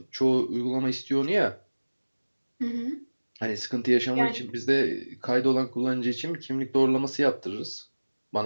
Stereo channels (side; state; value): both; inverted; correlation -1.00